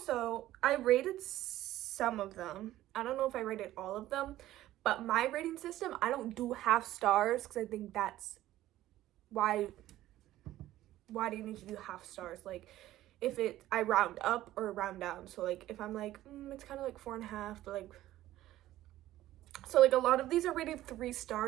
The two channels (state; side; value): quieter; left; 14.6 dB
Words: I rated some of them. I don't know if I rated all of them, but my rating system, I don't do half stars because I think that's why do you need to do half stars? Like, if I round up or round down. So like, if I'm like, it's kind of like 4.5, but like, so like a lot of these are rated 3